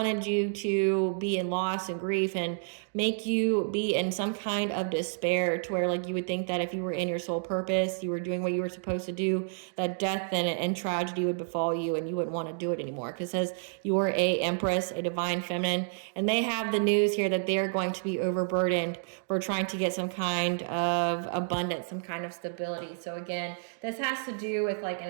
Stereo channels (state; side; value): silent; left; digital silence